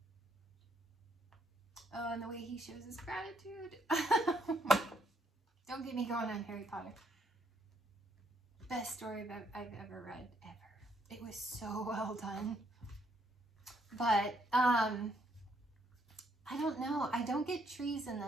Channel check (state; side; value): normal; both; correlation 0.71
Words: Oh, and the way he shows his gratitude. Don't get me going on Harry Potter. Best story I've ever read, ever. It was so well done. But, I don't know. I don't get trees in